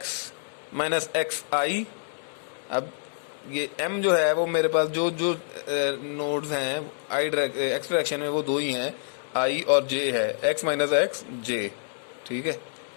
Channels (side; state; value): right; silent; digital silence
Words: माइनस एक्स आई। अब ये m जो है वो मेरे पास जो जो नोड्स हैं आई एक्स डायरेक्शन में वो दो ही हैं, i और j है, x माइनस एक्स जे। ठीक है,